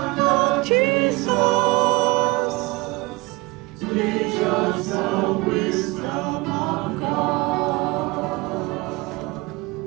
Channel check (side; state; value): left; quieter; 24.2 dB